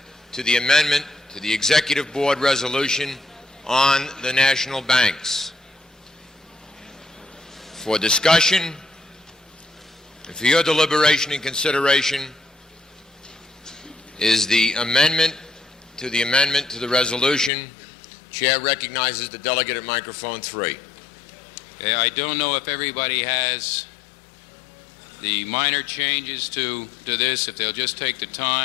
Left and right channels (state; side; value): drops out; right; at 17.5 s